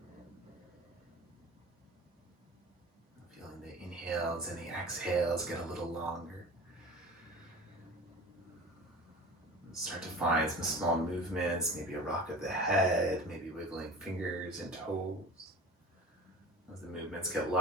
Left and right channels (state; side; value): normal; both; correlation 0.35